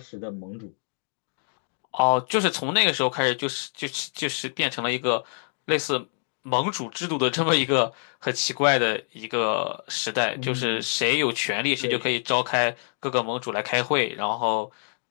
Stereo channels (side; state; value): right; silent; digital silence